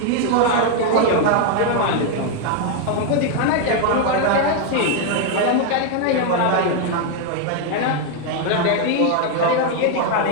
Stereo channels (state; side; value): different; both; correlation 0.00